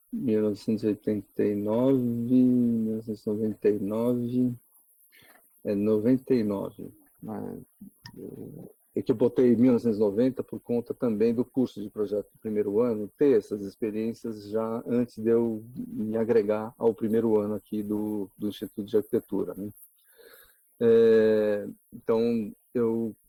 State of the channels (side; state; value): both; identical; correlation 1.00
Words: 1989, 1999, 99. É que eu botei 1990 por conta também do curso de projeto do primeiro ano, ter essas experiências já antes de eu me agregar ao primeiro ano aqui do Instituto de Arquitetura, né? Então eu